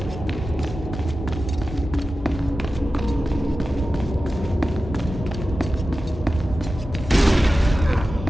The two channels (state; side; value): normal; both; correlation 0.94